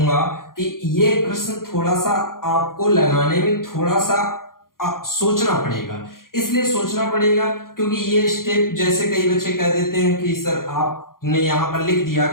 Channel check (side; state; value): right; late; 0.91 ms